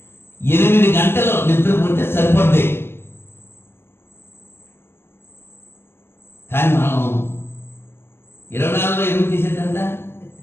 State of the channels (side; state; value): right; late; 0.11 ms